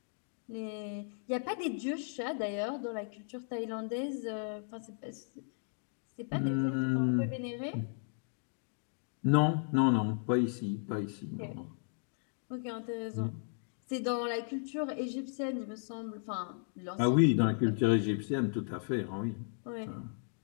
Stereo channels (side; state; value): right; silent; digital silence